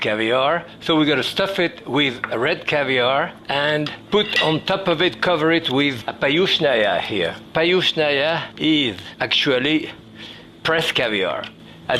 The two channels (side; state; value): both; identical; correlation 1.00